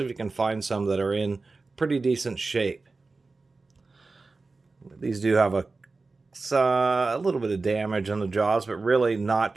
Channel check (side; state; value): left; quieter; 3.8 dB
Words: if you can find some that are in pretty decent shape. These do have a little bit of damage on the jaws, but really not